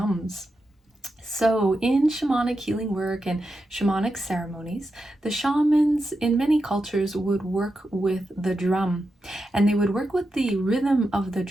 So in shamanic healing work and shamanic ceremonies, the shamans in many cultures would work with the drum, and they would work with the rhythm of the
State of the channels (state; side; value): normal; both; correlation 0.88